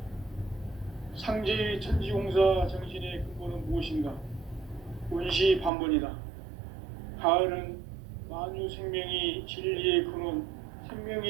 상제의 천지공사 정신의 근본은 무엇인가? 온시 반본이다. 가을은 만유 생명이 진리의 근원,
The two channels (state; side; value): drops out; left; at 5.7 s